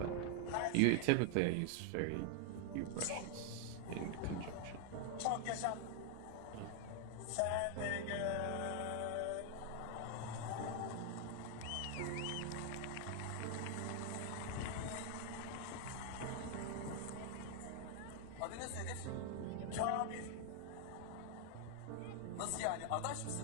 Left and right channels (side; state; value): both; different; correlation 0.00